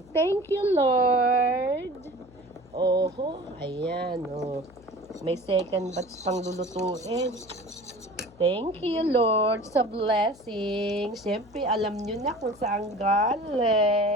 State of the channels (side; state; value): left; noise; hum, 25 dB below the sound